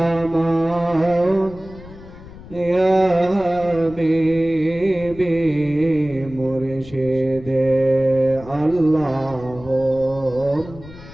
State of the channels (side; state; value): left; noise; rumble, 17 dB below the sound